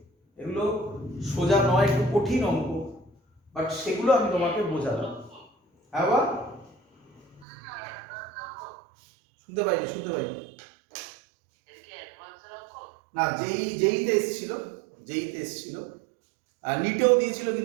এগুলো সোজা নয়, একটু কঠিন অঙ্ক, বাট সেগুলো আমি তোমাকে বোঝালাম। হ্যাঁ বা শুনতে পাইনি, শুনতে পাইনি না, যেইতে এসেছিল, যেইতে এসেছিল, আর নিটেও দিয়েছিল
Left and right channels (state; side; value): drops out; left; at 7.5 s